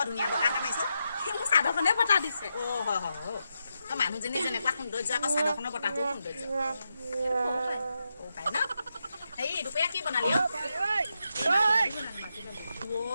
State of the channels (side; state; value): both; inverted; correlation -0.86